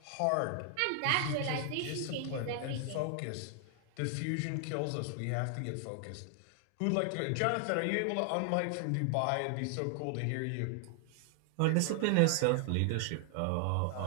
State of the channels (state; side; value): different; both; correlation 0.00